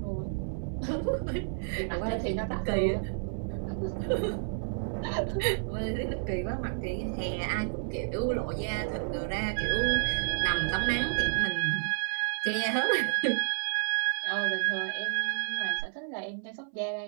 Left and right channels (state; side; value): silent; left; 57 dB below the other